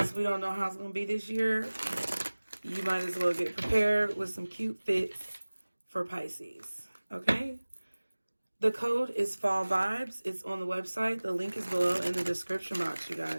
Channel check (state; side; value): inverted; both; correlation -1.00